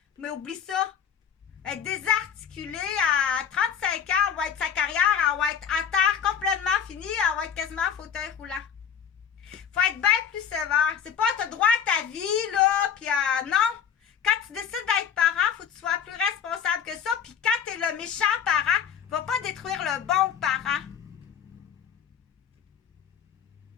Mais oublie ça. Elle est désarticulée à 35 ans, elle va être sa carrière, elle va être à terre complètement finie, elle va être quasiment en fauteuil roulant. Faut être bien plus sévère. C'est pas t'as droit à ta vie, là, puis non. Quand tu décides d'être parent, faut que tu sois plus responsable que ça. Puis quand t'es le méchant parent, va pas détruire le bon parent.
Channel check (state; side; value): quieter; right; 7.8 dB